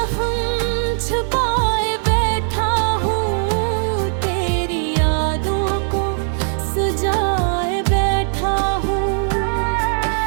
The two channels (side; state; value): left; silent; 66 dB below the other